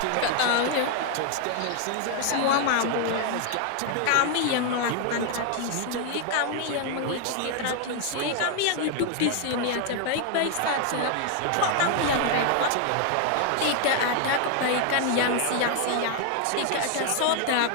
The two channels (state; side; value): different; both; correlation 0.00